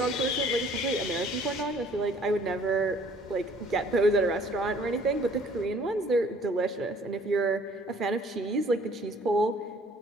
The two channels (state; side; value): normal; both; correlation 0.56